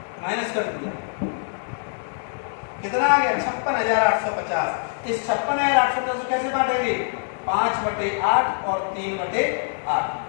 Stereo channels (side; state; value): right; silent; digital silence